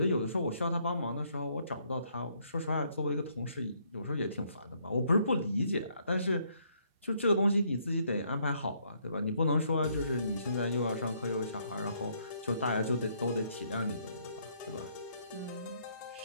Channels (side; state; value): both; inverted; correlation -0.70